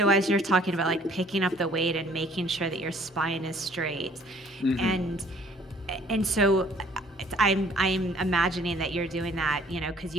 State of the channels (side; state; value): both; normal; correlation 0.58